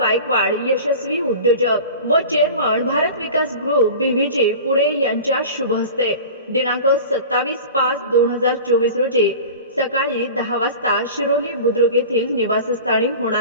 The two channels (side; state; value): both; inverted; correlation -0.36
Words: यशस्वी उद्योजक व चेअरमन भारत विकास ग्रुप बीव्हीजी पुणे यांच्या शुभ हस्ते दिनांक 27/5/2024 रोजी सकाळी 10 वाजता शिरोली बुद्रुक येथील निवासस्थानी